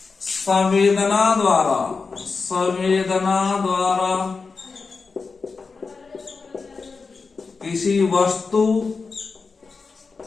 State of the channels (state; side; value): quieter; right; 4.6 dB